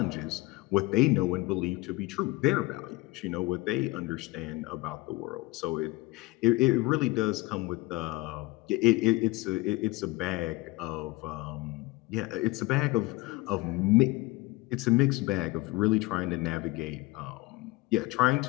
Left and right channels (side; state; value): right; quieter; 21.9 dB